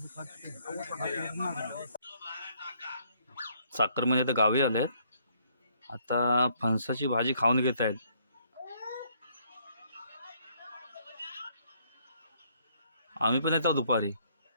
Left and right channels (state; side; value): inverted; both; correlation -0.67